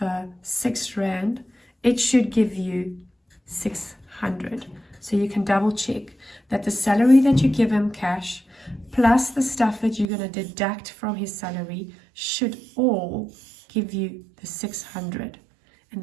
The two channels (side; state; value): left; drops out; at 10.1 s